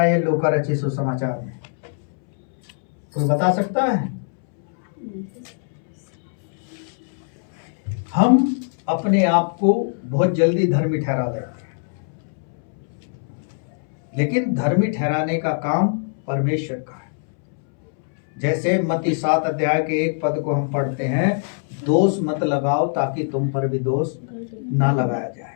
लूका रचित सुसमाचार में? कोई बता सकता है? हम अपने आप को बहुत जल्दी धर्मी ठहरा लेते हैं, लेकिन धर्मी ठहराने का काम परमेश्वर का है। जैसे मत्ती 7 अध्याय के 1 पद को हम पढ़ते हैं, दोष मत लगाओ ताकि तुम पर भी दोष ना लगाया जाए।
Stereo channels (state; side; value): silent; right; 64 dB below the other